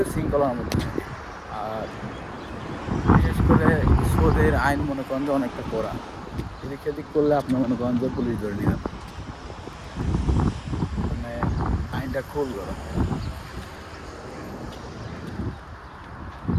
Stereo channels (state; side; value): identical; both; correlation 1.00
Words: শৃঙ্খলার মধ্যে থাকে। আর বিশেষ করে সৌদির আইন মনে করেন যে অনেকটা কড়া। এদিক সেদিক করলে আপনি মনে করেন যে পুলিশ ধরে নিয়ে যাবে। মানে আইনটা খুব কড়া।